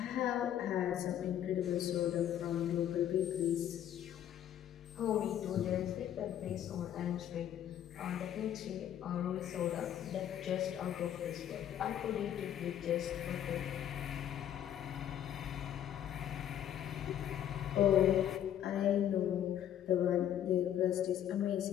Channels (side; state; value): right; quieter; 10.7 dB